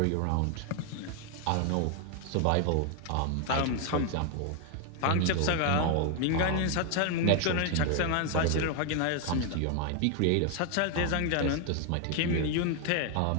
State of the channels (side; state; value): both; different; correlation 0.00